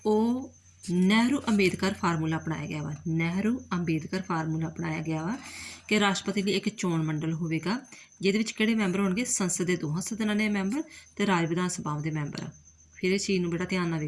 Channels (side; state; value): both; identical; correlation 1.00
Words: ਉਹ ਨਹਿਰੂ ਅੰਬੇਦਕਰ ਫਾਰਮੂਲਾ ਅਪਣਾਇਆ ਗਿਆ ਵਾ। ਨਹਿਰੂ ਅੰਬੇਦਕਰ ਫਾਰਮੂਲਾ ਅਪਣਾਇਆ ਗਿਆ ਵਾ ਕਿ ਰਾਸ਼ਟਰਪਤੀ ਲਈ ਇੱਕ ਚੋਣ ਮੰਡਲ ਹੋਵੇਗਾ, ਜਿਹਦੇ ਵਿੱਚ ਕਿਹੜੇ ਮੈਂਬਰ ਹੋਣਗੇ, ਸੰਸਦ ਦੇ ਦੋਹਾਂ ਸਦਨਾਂ ਦੇ ਮੈਂਬਰ ਤੇ ਰਾਜ ਵਿਧਾਨ ਸਭਾਵਾਂ ਦੇ ਮੈਂਬਰ। ਫਿਰ ਇਸ ਚੀਜ਼ ਨੂੰ ਬੜਾ ਧਿਆਨ ਨਾਲ